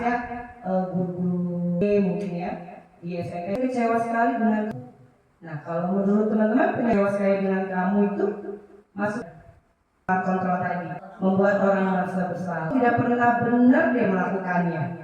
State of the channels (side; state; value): both; identical; correlation 1.00